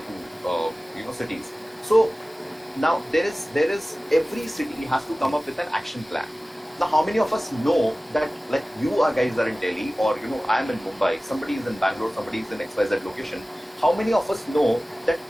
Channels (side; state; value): both; normal; correlation 0.97